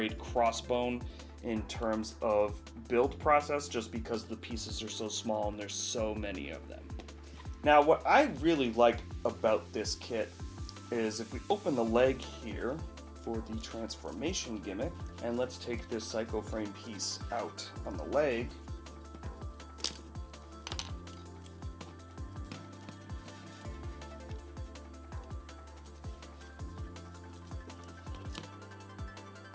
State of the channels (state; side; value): identical; both; correlation 1.00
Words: crossbone in terms of build process, just because the pieces are so small and there's so many of them. Now, what I really like about this kit is if we open the leg here for the transformation gimmick, and let's take this psycho frame piece out on the leg.